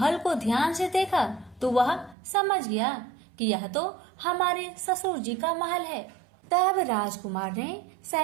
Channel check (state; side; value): drops out; left; at 2.1 s